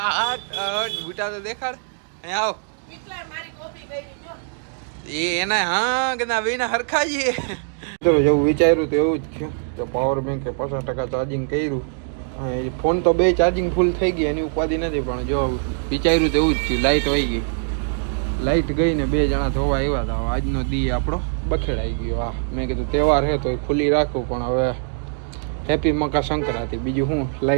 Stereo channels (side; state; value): left; silent; digital silence